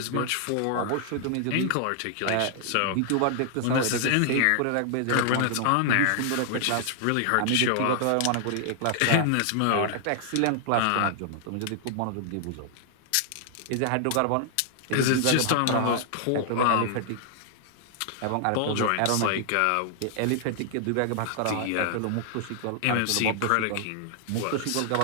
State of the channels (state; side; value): different; both; correlation 0.00